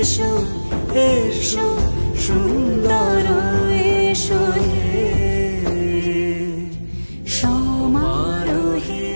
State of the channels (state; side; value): inverted; both; correlation -1.00